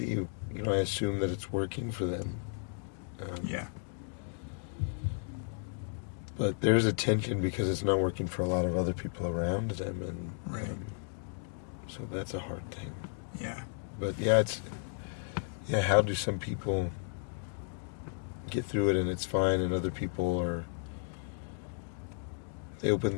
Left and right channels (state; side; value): silent; right; digital silence